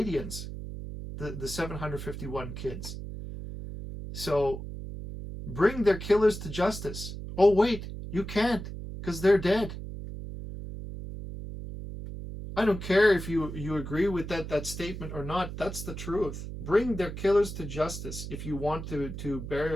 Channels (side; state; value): right; noise; hum, 8 dB below the sound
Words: the 751 kids. So, bring their killers to justice. Oh, wait, you can't, because they're dead. I don't care if you agree with that statement or not. That's the truth. Bring their killers to justice if you want to